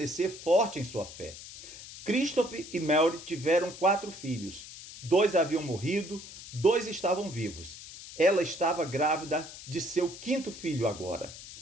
forte em sua fé. Christopher e Mary tiveram 4 filhos. 2 haviam morrido, 2 estavam vivos. Ela estava grávida de seu 5º filho agora.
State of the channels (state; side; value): noise; left; hiss, 14 dB below the sound